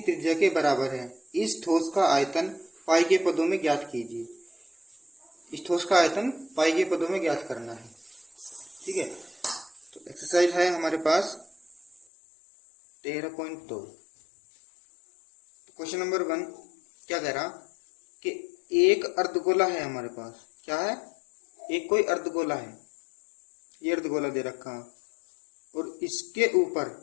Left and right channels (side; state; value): right; drops out; at 12.1 s